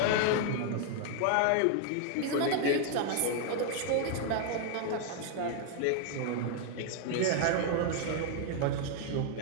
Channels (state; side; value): different; both; correlation 0.00